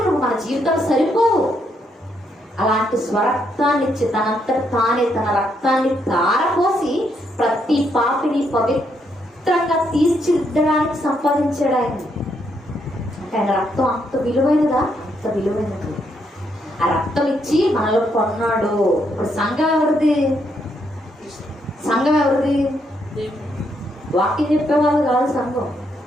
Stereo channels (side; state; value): both; normal; correlation 0.76